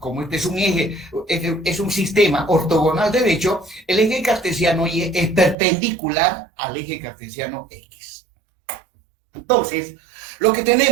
este es un sistema ortogonal derecho, el eje cartesiano Y es perpendicular al eje cartesiano X. Entonces, lo que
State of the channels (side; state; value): left; drops out; at 5.6 s